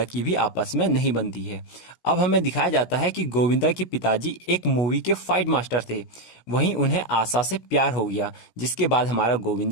की भी आपस में नहीं बनती है। अब हमें दिखाया जाता है कि गोविंदा के पिताजी एक मूवी के फाइट मास्टर थे, वहीं उन्हें आशा से प्यार हो गया, जिसके बाद हमारा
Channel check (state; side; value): late; right; 17 ms